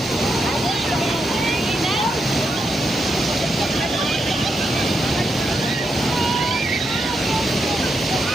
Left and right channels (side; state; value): both; normal; correlation 0.83